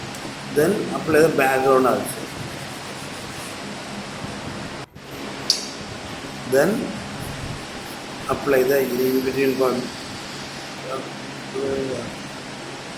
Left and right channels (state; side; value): identical; both; correlation 1.00